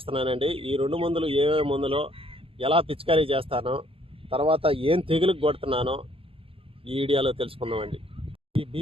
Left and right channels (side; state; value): left; late; 0.27 ms